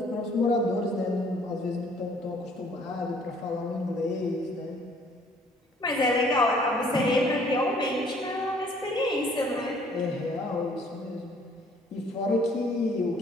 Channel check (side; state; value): both; normal; correlation 0.59